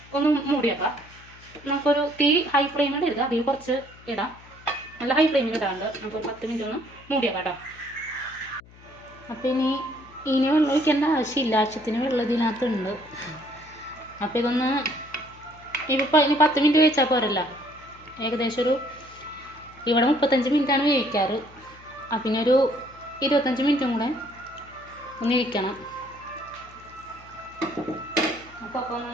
ഒന്ന് മൂടിയേക്കാം. നമുക്കൊരു തീ ഹൈ ഫ്ലെയിമിൽ ഇടുക, അതിൽ കുറച്ച് ഇടാം. നല്ല ഹൈ ഫ്ലെയിമിൽ ഇടാണ്ട് നമുക്കൊരു 10 മിനിറ്റ് ഒന്ന് മൂടിയേക്കാം കേട്ടോ. അപ്പോൾ ഇനി വെള്ളം ഒഴിക്കേണ്ട ആവശ്യമില്ല, ആവശ്യത്തിന് വെള്ളം ഇതിനകത്തുണ്ട്. അപ്പോൾ ഇനി 10 മിനിറ്റ് കഴിച്ചാൽ പോരല്ല. ഏകദേശം ഇവിടെ 35 മിനിറ്റാണ് വേവിക്കാറ്. പിന്നെ ഒരു 25 മിനിറ്റും കൂടെ ഒന്ന് ഇരിക്കണം. അപ്പോൾ ഒന്ന്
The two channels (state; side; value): noise; left; hum, 23 dB below the sound